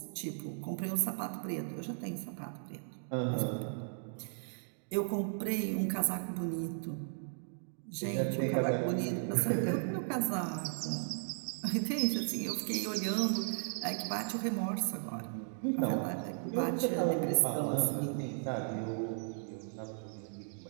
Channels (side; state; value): left; silent; digital silence